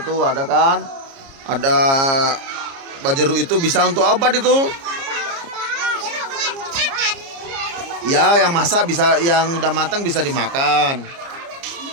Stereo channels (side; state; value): left; late; 29 ms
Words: tuh ada kan? Ada buah jeruk itu bisa untuk obat itu. Ya, yang masak bisa, yang udah matang bisa dimakan.